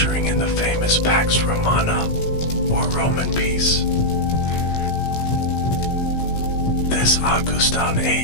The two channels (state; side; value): late; right; 16 ms